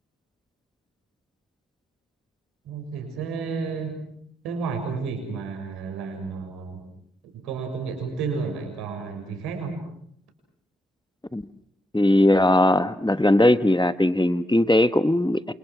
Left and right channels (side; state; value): both; normal; correlation 0.82